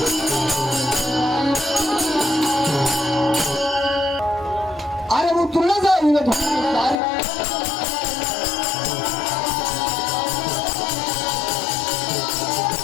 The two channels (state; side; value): drops out; right; at 7.0 s